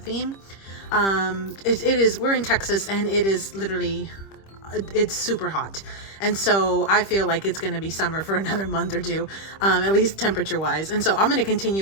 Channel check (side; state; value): right; late; 26 ms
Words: We're in Texas and it is literally, it's super hot. And so I feel like it's going to be summer for another month or 2, at least temperature wise. And so I'm going to